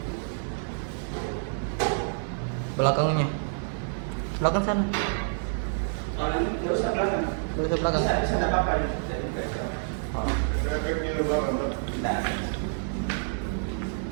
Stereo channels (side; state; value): left; silent; digital silence